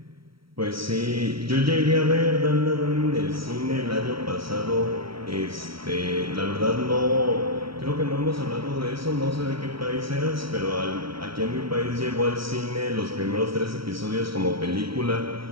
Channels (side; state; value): left; late; 0.75 ms